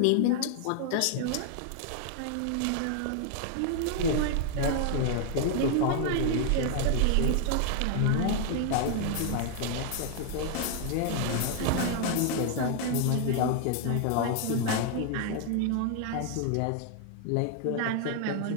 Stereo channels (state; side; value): different; both; correlation 0.00